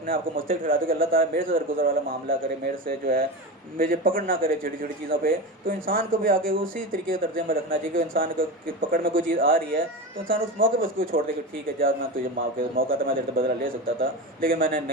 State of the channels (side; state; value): both; normal; correlation 0.23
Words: آپ کو مستحق ٹھہراتا کہ اللہ تعالیٰ میرے سے درگزر والا معاملہ کرے, میرے سے جو ہے مجھے پکڑ نہ کرے چھوٹی چھوٹی چیزوں پہ, تو انسان کو بھی آگے اسی طریقے کا طرز عمل رکھنا چاہیے کہ انسان کو پکڑ میں کوئی چیز آ رہی ہے تو انسان اس موقع پہ اس کو چھوڑ دے کہ ٹھیک ہے جا, میں تجھے معاف کر, موقع تھا میں تیرے سے بدلہ لے سکتا تھا لیکن میں نے